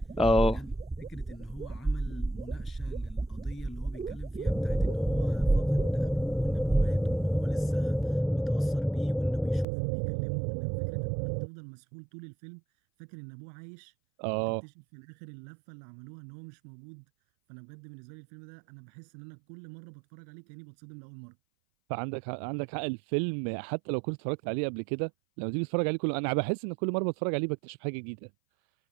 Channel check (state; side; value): drops out; left; at 9.7 s